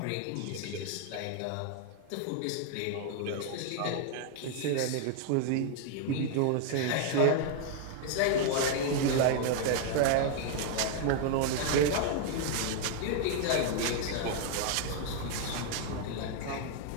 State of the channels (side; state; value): both; different; correlation 0.00